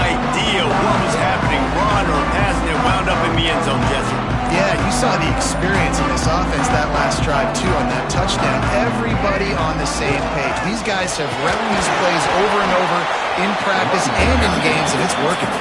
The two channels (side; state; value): both; identical; correlation 1.00